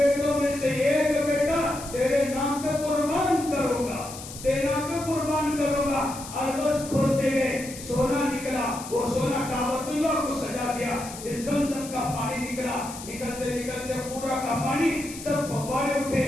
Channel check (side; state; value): left; noise; hiss, 13 dB below the sound